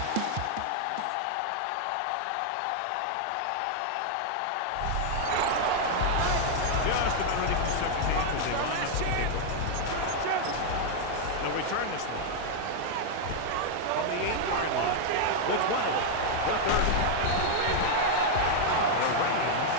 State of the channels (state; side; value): different; both; correlation 0.00